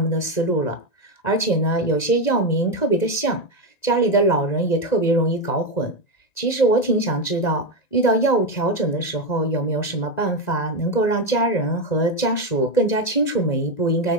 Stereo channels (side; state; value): right; late; 1.9 ms